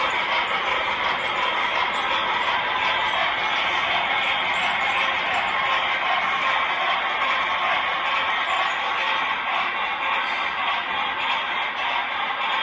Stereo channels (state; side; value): identical; both; correlation 1.00